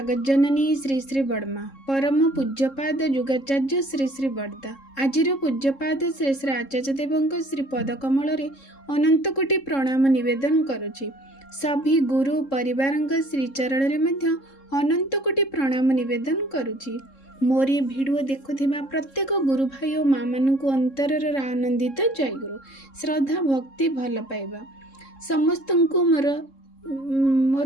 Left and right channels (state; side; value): late; right; 3.7 ms